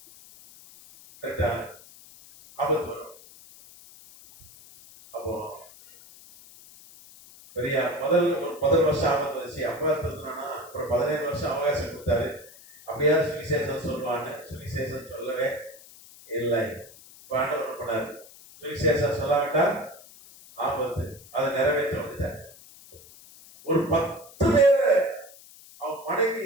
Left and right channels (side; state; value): left; noise; hiss, 21 dB below the sound